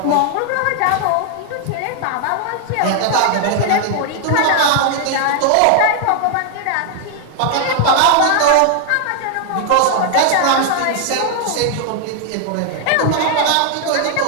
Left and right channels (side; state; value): both; different; correlation 0.00